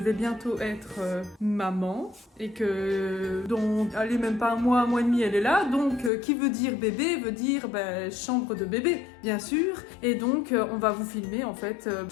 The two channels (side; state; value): right; drops out; at 6.1 s